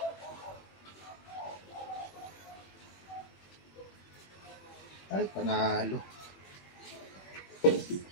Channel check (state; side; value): late; right; 21 ms